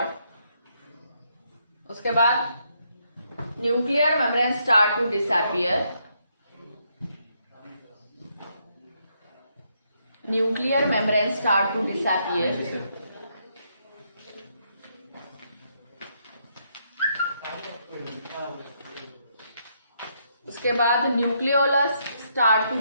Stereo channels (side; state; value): both; inverted; correlation -0.75